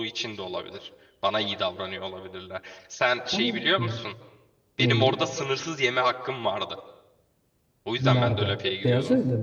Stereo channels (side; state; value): both; identical; correlation 1.00